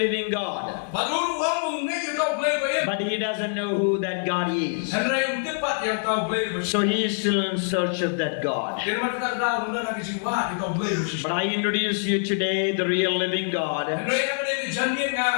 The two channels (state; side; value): silent; right; 62 dB below the other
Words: God. But he doesn't know who that God is. So he is still in search of that God. But I introduce you today the real living God. And